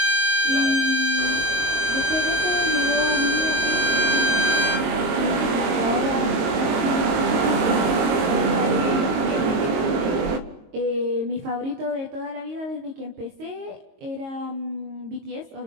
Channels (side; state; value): left; late; 22 ms